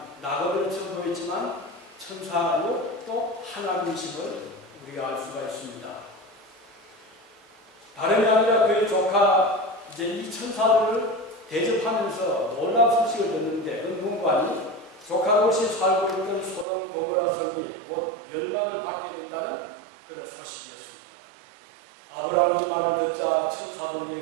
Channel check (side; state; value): left; drops out; at 16.7 s